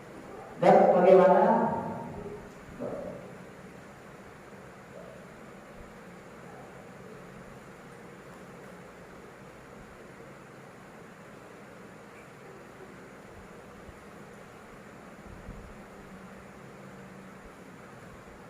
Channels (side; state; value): both; identical; correlation 1.00